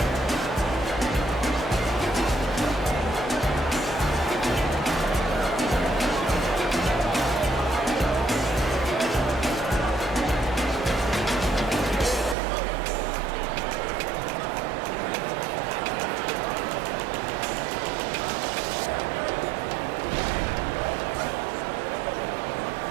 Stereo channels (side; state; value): left; drops out; at 12.4 s